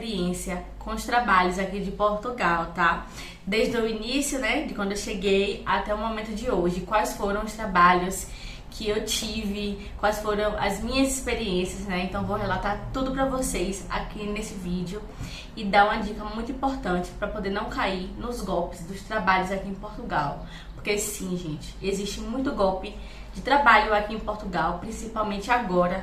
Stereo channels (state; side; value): identical; both; correlation 1.00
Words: com os trabalhos aqui de Portugal, tá? Desde o início, né, de quando eu cheguei até o momento de hoje. Quais foram os trabalhos que eu tive, quais foram as minhas experiências, né? Então vou relatar tudo pra vocês aqui nesse vídeo e dar uma dica muito importante para poder não cair nos golpes dos trabalhos aqui em Portugal. Porque sim, gente, existe muito golpe de trabalho aqui em Portugal, principalmente